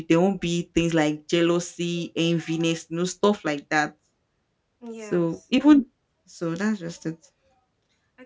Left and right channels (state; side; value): identical; both; correlation 1.00